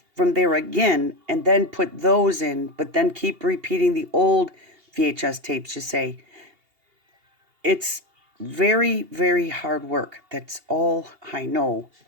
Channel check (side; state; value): left; late; 2.8 ms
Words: from there again, and then put those in, but then keep repeating the old VHS tapes, you say. It's very, very hard work. That's all I know.